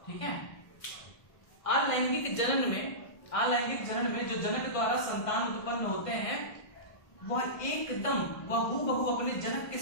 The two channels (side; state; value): right; late; 1.6 ms